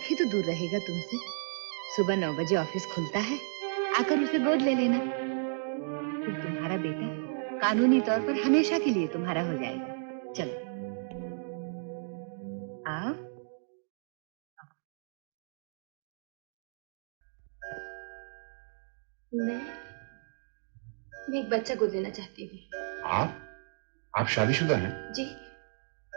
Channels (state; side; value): silent; left; digital silence